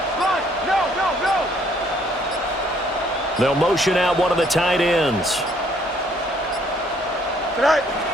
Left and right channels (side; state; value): both; normal; correlation 0.64